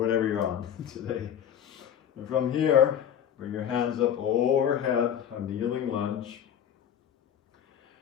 you're on today. And from here, bring your hands up overhead, a kneeling lunge.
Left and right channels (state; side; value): quieter; right; 9.3 dB